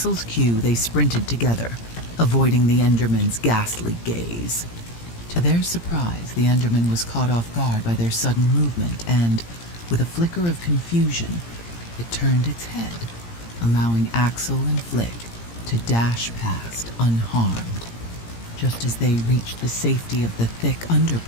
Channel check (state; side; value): late; right; 17 ms